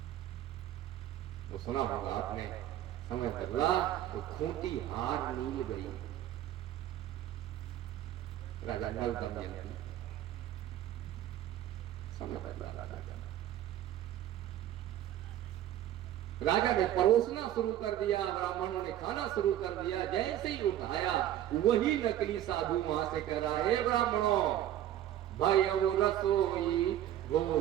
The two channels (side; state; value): left; quieter; 12.2 dB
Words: वो सुना होगा आपने, समय बदला तो खूंटी हार नील गई। राजा नल दमयंती, समय बदला राजा ने परोसना शुरू कर दिया, ब्राह्मणों ने खाना शुरू कर दिया। जैसे ही उठाया वही नकली साधु वहां से कह रहा है ब्राह्मणों भयउ रसोई